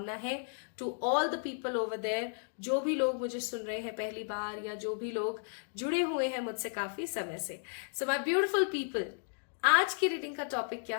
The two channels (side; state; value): right; silent; digital silence